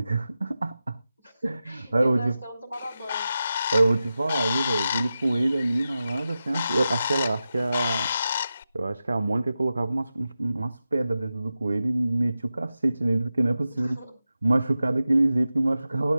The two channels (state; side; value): inverted; both; correlation -0.92